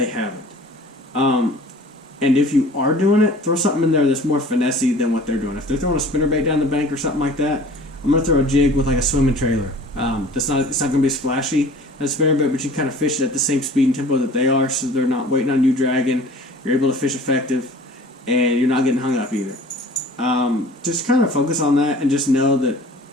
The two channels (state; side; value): normal; both; correlation 0.46